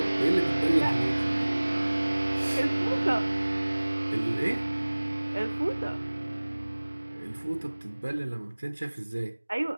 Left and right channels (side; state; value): both; inverted; correlation -1.00